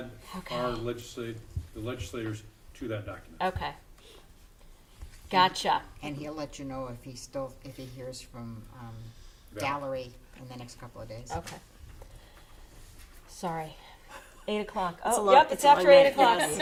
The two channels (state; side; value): identical; both; correlation 1.00